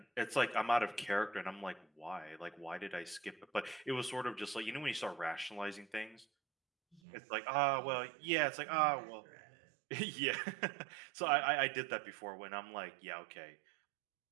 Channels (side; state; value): left; drops out; at 7.0 s